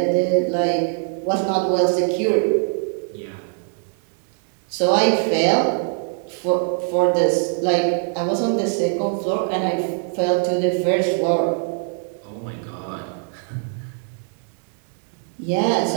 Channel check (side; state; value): left; silent; 58 dB below the other